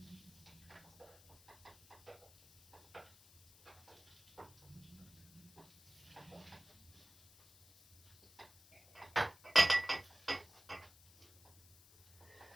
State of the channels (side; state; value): left; noise; hiss, 24 dB below the sound